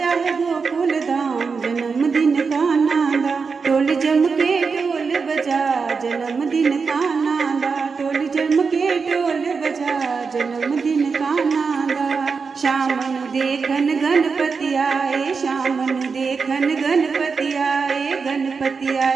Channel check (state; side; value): quieter; left; 5.1 dB